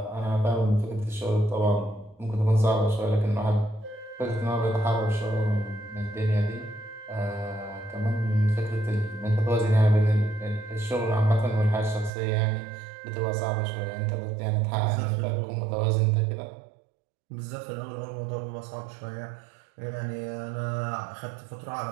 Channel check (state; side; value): drops out; left; at 12.1 s